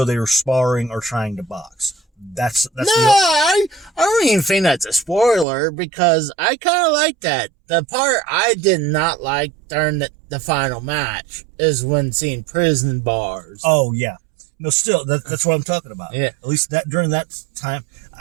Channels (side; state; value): left; drops out; at 5.5 s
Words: they were sparring or trying to box. I don't even think that's a spoiler, because I kind of like that. The part I did not like during the final match is when seeing prison bars. Oh yeah, no, still that's what I'm talking about. Yeah, at least that during that time,